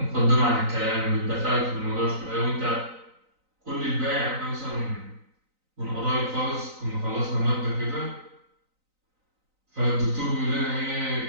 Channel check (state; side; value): late; left; 3.9 ms